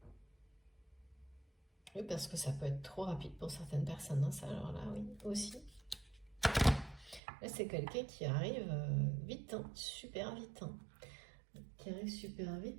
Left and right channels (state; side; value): drops out; left; at 7.2 s